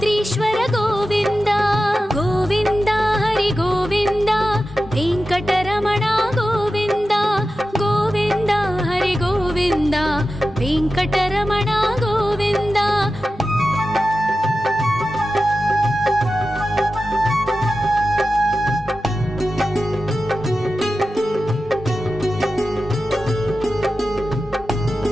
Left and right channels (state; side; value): normal; both; correlation 0.93